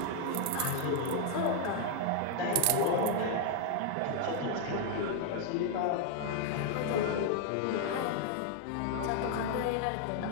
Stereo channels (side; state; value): both; different; correlation 0.00